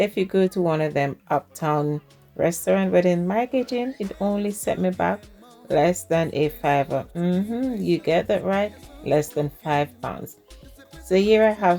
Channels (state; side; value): identical; both; correlation 1.00